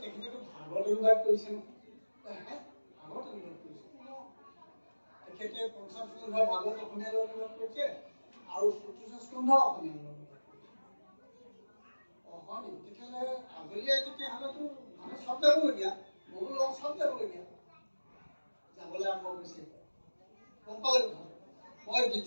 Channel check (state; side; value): inverted; both; correlation -1.00